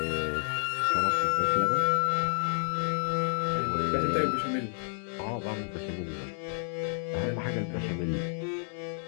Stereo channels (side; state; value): right; silent; 58 dB below the other